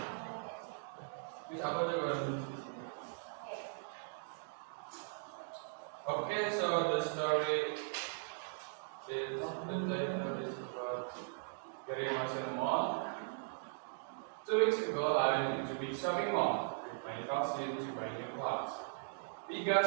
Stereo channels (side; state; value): left; silent; digital silence